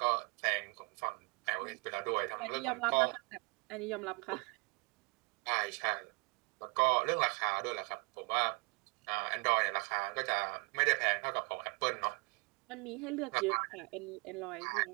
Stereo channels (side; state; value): left; quieter; 29.9 dB